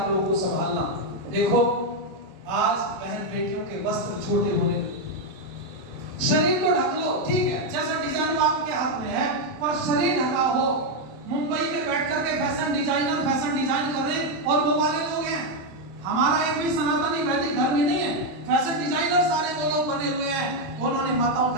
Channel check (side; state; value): left; late; 27 ms